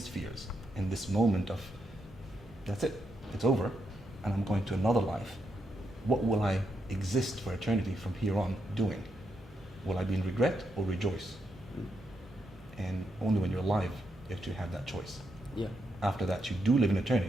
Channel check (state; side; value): normal; both; correlation 0.81